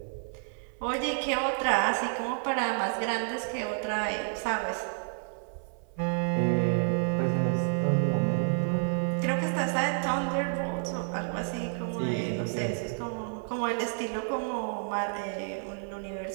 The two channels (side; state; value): left; silent; 58 dB below the other